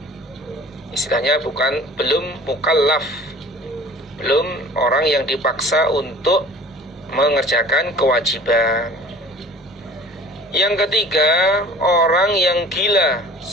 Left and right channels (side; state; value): both; normal; correlation 0.45